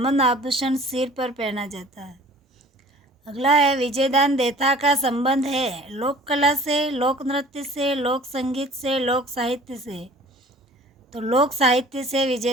आभूषण सिर पर पहना जाता है। अगला है, विजयदान देथा का संबंध है लोक कला से, लोक नृत्य से, लोक संगीत से, लोक साहित्य से। तो लोक साहित्य से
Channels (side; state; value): both; normal; correlation 0.48